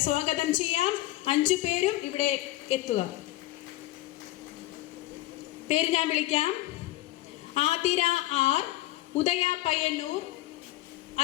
സ്വാഗതം ചെയ്യാം. 5 പേരും ഇവിടെ എത്തുക. പേര് ഞാൻ വിളിക്കാം. ആതിര ആർ, ഉദയ പയ്യന്നൂർ,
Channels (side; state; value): right; quieter; 16.8 dB